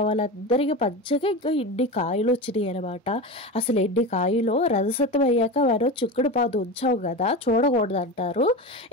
వాళ్ళందరికీ పంచగా ఇంకా ఇన్ని కాయలు వచ్చినాయి అనమాట. అసలు ఎన్ని కాయలు రథసప్తమి అయ్యాక మనం చుక్కుడు పాదు ఉంచావు కదా, చూడకూడదు అంటారు.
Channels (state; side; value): normal; both; correlation 0.24